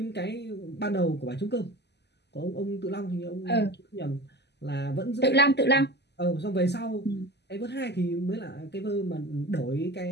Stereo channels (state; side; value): late; right; 0.50 ms